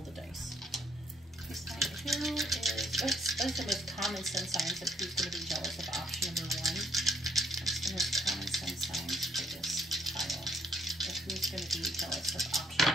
the dice. Please tell me who is, what's the most common sun signs of who's going to be jealous of option number 1? What's the most common sun signs for this tile of who's going to be jealous of option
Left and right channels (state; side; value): normal; both; correlation 0.68